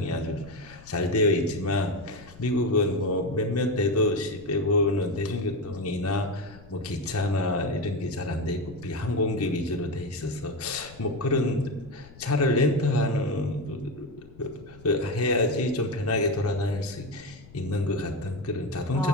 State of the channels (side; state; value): left; noise; rumble, 21 dB below the sound